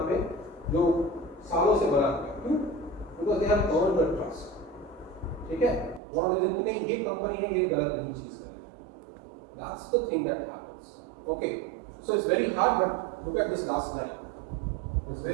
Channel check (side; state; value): left; drops out; at 6.0 s